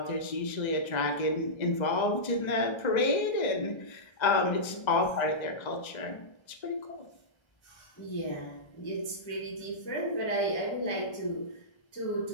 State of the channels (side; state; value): right; late; 1.3 ms